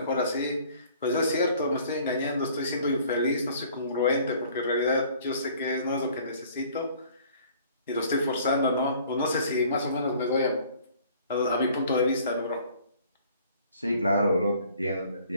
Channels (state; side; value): inverted; both; correlation -0.54